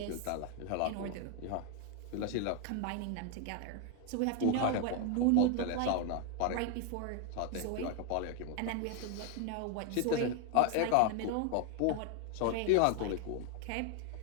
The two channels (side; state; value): both; different; correlation 0.00